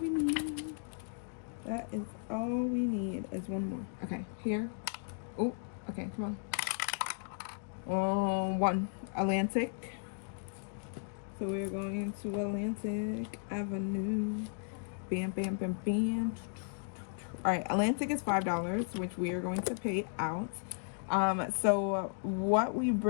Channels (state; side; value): silent; right; digital silence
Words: need. That is all we need is one more. Okay, here. Oh, okay, come on. 1. Atlantic. So we're going to Atlantic Avenue. Bam, bam, bam, bam. All right, Atlantic is $5, which we are going to pay out. So what we